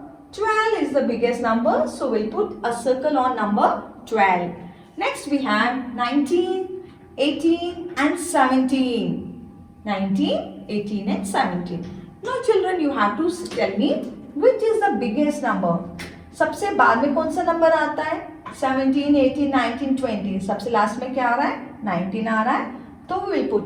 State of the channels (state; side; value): identical; both; correlation 1.00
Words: 12 is the biggest number. So we'll put a circle on number 12. Next we have 19, 18 and 17. 19, 18 and 17. Now children, you have to tell me which is the biggest number. सबसे बाद में कौन सा number आता है? 17, 18, 19, 20. सबसे last में क्या आ रहा है? 19 आ रहा है. तो we will